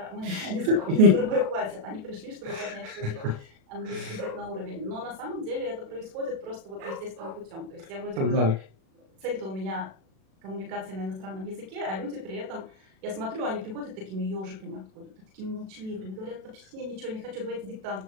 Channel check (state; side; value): late; left; 37 ms